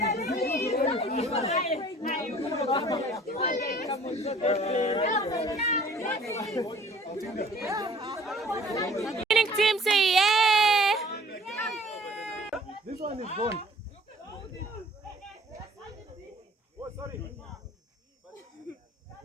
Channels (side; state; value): both; normal; correlation 0.52